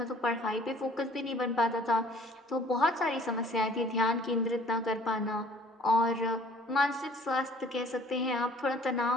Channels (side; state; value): both; normal; correlation 0.54